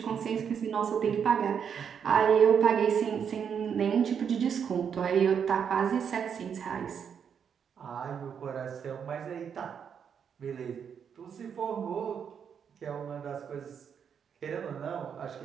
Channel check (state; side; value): quieter; left; 7.5 dB